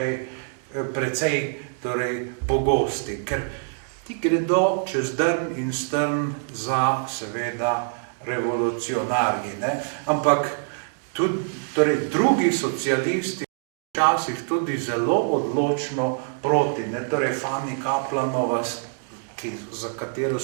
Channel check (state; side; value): silent; left; digital silence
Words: precej torej pogosti, ker ti gredo čez drn in strn za seveda revolucionarji, ne? Ampak tudi torej drugi socialisti včasih tudi zelo odločno proti, ne? Torej Fanny Kaplanova, za katero